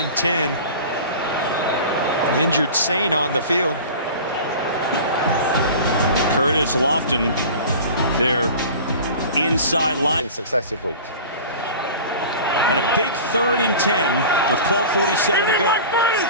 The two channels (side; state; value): both; inverted; correlation -0.37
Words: 10. An injured Saint on the field. Curtis Lofton, their inside line. In successive weeks. And a big 3rd and 10 with 12:47 to go.